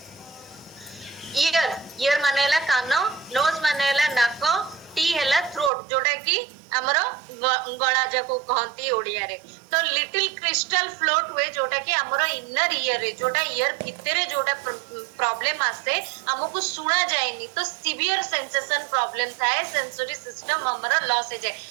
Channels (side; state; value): left; drops out; at 5.7 s